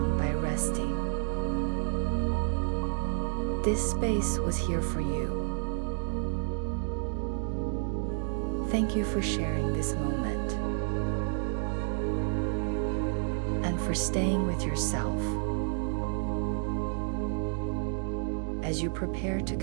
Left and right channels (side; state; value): left; silent; digital silence